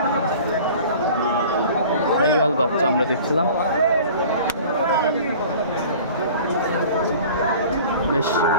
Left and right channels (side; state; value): both; inverted; correlation -0.44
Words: শাহিওয়াল বাচ্চা আমরা দেখছিলাম, বেশ